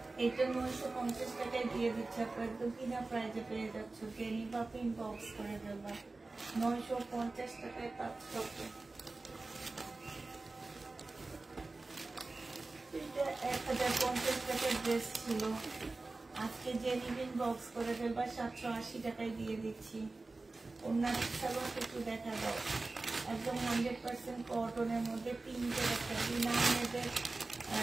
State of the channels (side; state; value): left; quieter; 3.4 dB